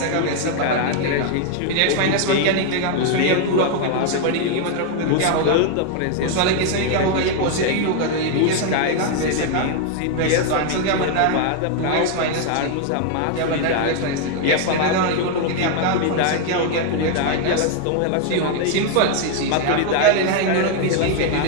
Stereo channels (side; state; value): both; different; correlation 0.00